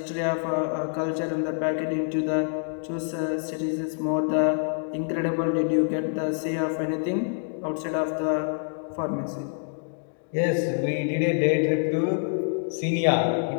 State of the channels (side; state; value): right; silent; digital silence